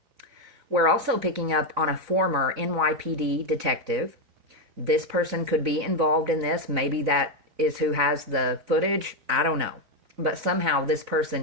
We're also picking up on a former NYPD detective. This person could be involved in this. Maybe that is who has the footage. I don't know. But somehow this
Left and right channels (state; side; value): late; left; 3.9 ms